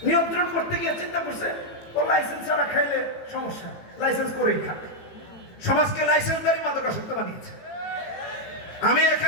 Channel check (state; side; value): late; right; 18 ms